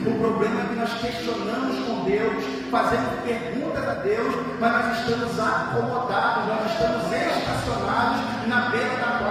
O problema é que nós questionamos com Deus, fazemos perguntas a Deus, mas nós estamos acomodados, nós estamos estacionados na beira da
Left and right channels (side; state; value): both; identical; correlation 1.00